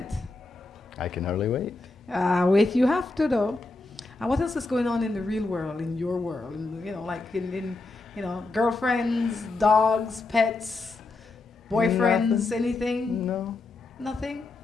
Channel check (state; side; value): quieter; right; 3.4 dB